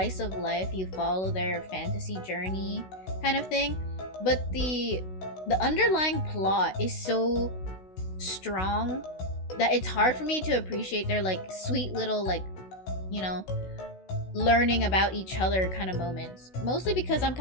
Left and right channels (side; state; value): right; late; 16 ms